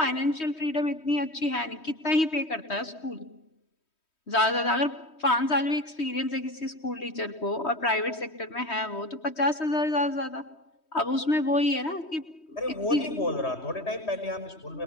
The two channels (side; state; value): right; late; 3.1 ms